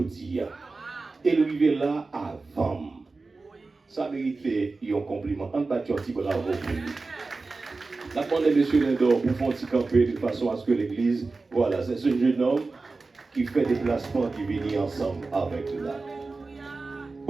Et arrivé là avant. Ça méritait un compliment. On bat un petit bravo pour lui. La demande de M. Lindor pour faire un petit camper de façon à ce que l'église, voilà, c'est ce jeune homme qui fait des placements qui viennent ensemble avec là.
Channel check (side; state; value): left; quieter; 3.8 dB